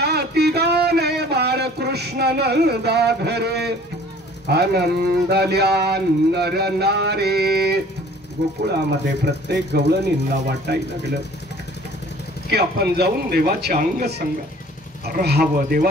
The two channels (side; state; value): both; normal; correlation 0.51